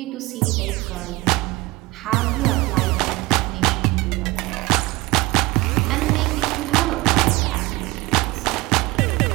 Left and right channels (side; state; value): left; quieter; 21.7 dB